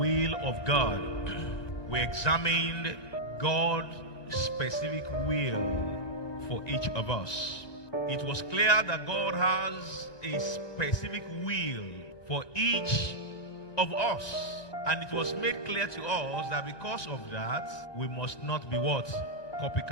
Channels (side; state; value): right; late; 1.9 ms